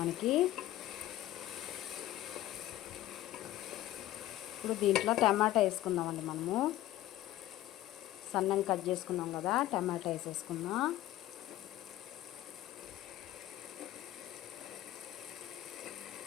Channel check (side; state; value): right; quieter; 14.4 dB